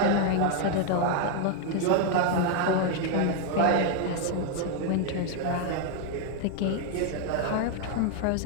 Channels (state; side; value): different; both; correlation 0.01